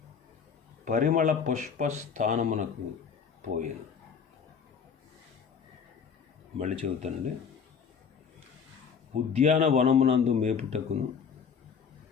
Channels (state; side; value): quieter; right; 6.5 dB